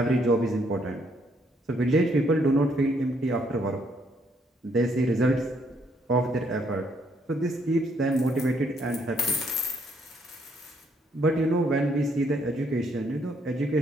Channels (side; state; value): both; normal; correlation 0.70